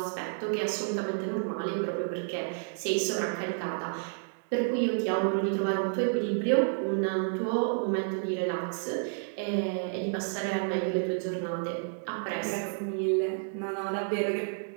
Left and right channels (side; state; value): left; silent; digital silence